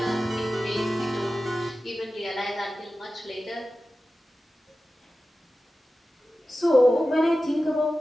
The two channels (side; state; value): both; normal; correlation 0.94